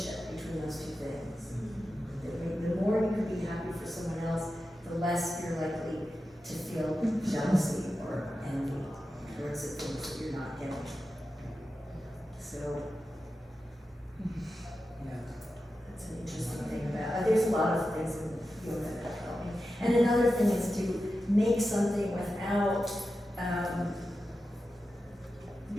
between those 2 things. The more you can be happy for someone else, the less you're likely to feel jealousy or envy towards the things that you're not getting. So that's an interesting thing about. There's a lot of things in yoga that help me. And another thing is to make something without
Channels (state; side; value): normal; both; correlation 0.91